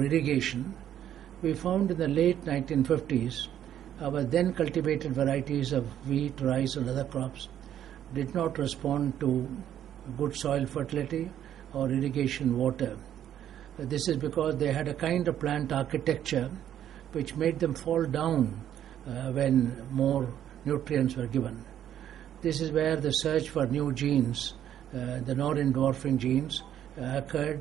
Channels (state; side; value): quieter; left; 10.6 dB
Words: irrigation, we found in the late 1950s our then cultivated varieties of wheat, rice and other crops did not respond to good soil fertility or irrigation water. This is because they had a kind of plant architecture which made them fall down when more nutrients were given. This is where the search for new genes, the Norrin dwarfing genes,